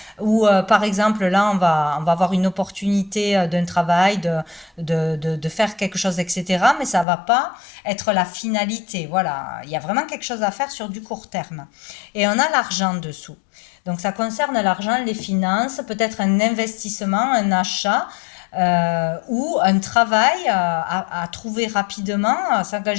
ou par exemple là on va avoir une opportunité d'un travail, de faire quelque chose, etc. Mais ça va pas être la finalité. Voilà, il y a vraiment quelque chose à faire sur du court terme. Et on a l'argent dessous. Donc ça concerne l'argent, les finances, peut-être un investissement, un achat. Ou un travail à trouver rapidement, à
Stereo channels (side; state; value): right; drops out; at 7.1 s